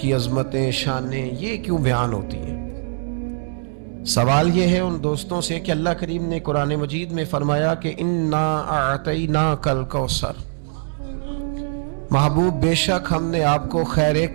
عظمتیں، شانیں، یہ کیوں بیان ہوتی ہیں؟ سوال یہ ہے ان دوستوں سے کہ اللہ کریم نے قرآن مجید میں فرمایا کہ انا اعطیناک الکوثر، محبوب بے شک ہم نے آپ کو خیر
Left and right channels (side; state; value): left; silent; 64 dB below the other